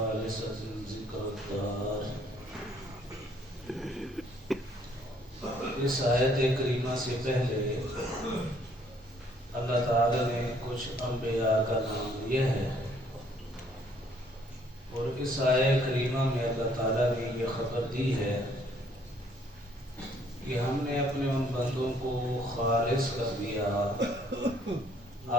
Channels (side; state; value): both; normal; correlation 0.64